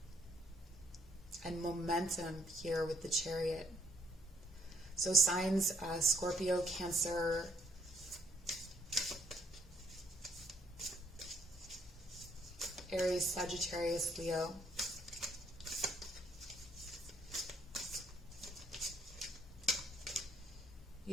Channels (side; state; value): both; normal; correlation 0.70